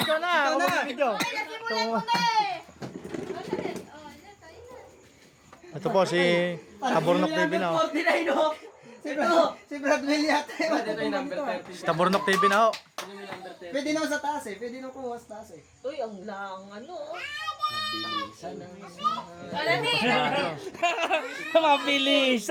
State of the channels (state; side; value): identical; both; correlation 1.00